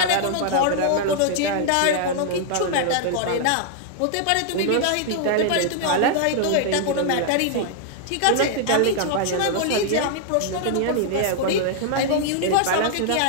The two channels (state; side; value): different; both; correlation 0.00